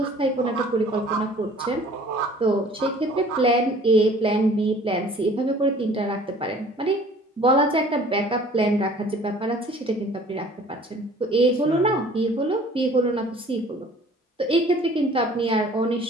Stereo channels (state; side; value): normal; both; correlation 0.51